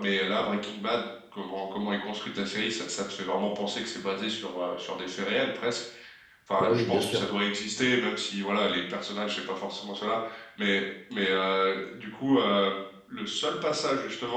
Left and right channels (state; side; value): identical; both; correlation 1.00